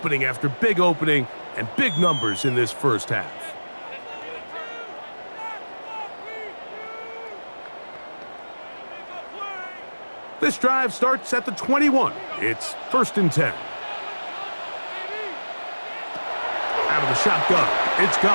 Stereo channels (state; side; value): inverted; both; correlation -1.00